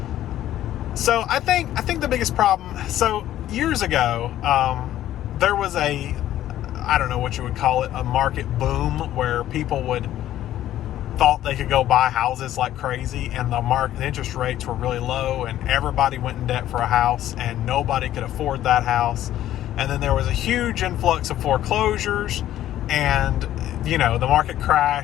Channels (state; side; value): quieter; right; 12.8 dB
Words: So I think the biggest problem, so years ago, there was I don't know what you would call it, a market boom where people thought they could go buy houses like crazy, and the interest rates were really low, and everybody went in debt for a house, and nobody could afford that house. And then there was a huge influx of foreclosures, and the market